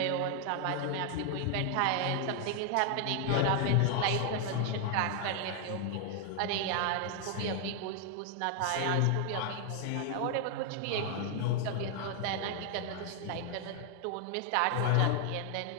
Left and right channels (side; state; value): both; different; correlation 0.00